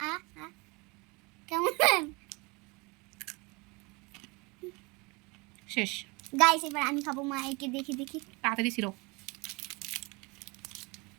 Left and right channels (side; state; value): left; quieter; 27.1 dB